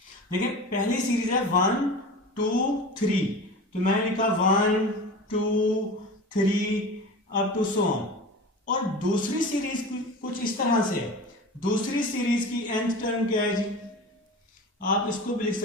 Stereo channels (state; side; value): normal; both; correlation 0.33